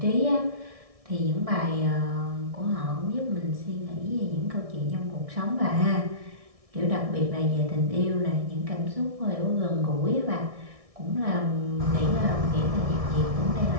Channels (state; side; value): late; left; 1.6 ms